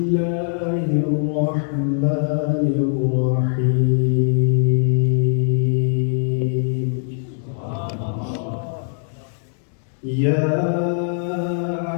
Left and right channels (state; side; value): silent; right; digital silence